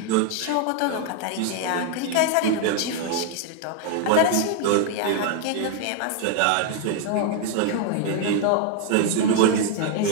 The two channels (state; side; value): different; both; correlation 0.00